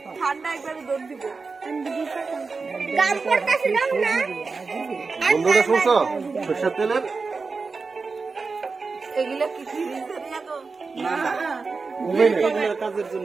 ঠান্ডা একবারে দৌড় দিব। বন্ধুরা শুনছো সরষের তেলের এগুলো কি কাজের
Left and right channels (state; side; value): quieter; left; 4.4 dB